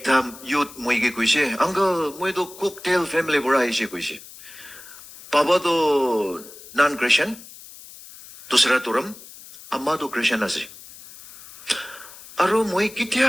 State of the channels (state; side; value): noise; left; hiss, 18 dB below the sound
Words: youth moige kuise. Uncle moido cocktail family bura ise kuise. Papa do non-Christian. Dusra turam. Amma do Christian ase. Aro moi